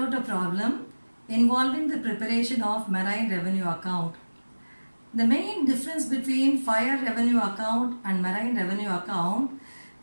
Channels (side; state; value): both; inverted; correlation -1.00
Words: a problem involving the preparation of marine revenue account. The main difference between fire revenue account and marine revenue account